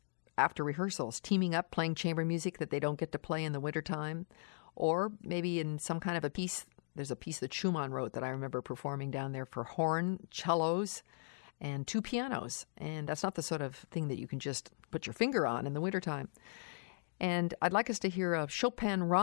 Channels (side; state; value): right; silent; digital silence